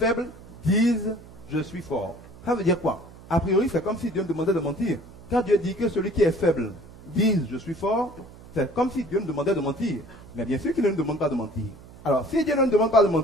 dise « je suis fort ». Ça veut dire quoi? A priori, c'est comme si Dieu me demandait de mentir. Quand Dieu dit que celui qui est faible dise « je suis fort », c'est comme si Dieu me demandait de mentir. Mais bien sûr qu'il ne nous demande pas de mentir. Alors, si Dieu ne nous demande pas de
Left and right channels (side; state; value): right; noise; hum, 20 dB below the sound